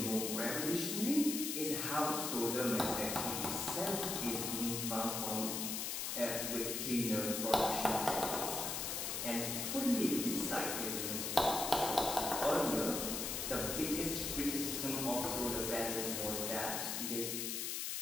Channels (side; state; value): left; noise; hiss, 2 dB below the sound